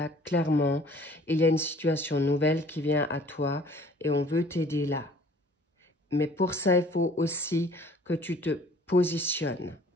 clairement, il y a une situation nouvelle qui vient à toi et on veut t'aider là. Mais pour ça, il faut aussi que tu te positionnes,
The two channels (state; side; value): normal; both; correlation 0.52